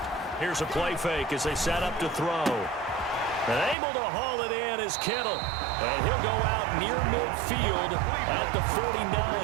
Here's a play fake as they set up to throw. And able to haul it in is Kittle. And he'll go out near midfield at the 49.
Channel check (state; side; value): drops out; left; at 3.8 s